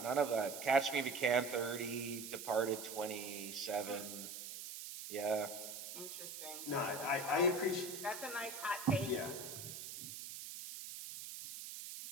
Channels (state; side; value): noise; right; hiss, 9 dB below the sound